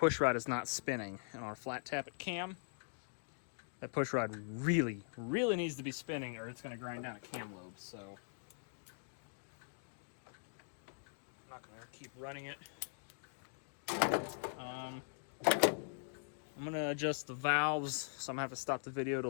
rod is not spinning. And on a flat tappet cam, that push rod really, really needs to be spinning or it's going to grind down a cam lobe. So I'm not going to keep running it. I'm going to adjust the valves, so I'm going to have to stop the video to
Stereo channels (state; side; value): silent; right; digital silence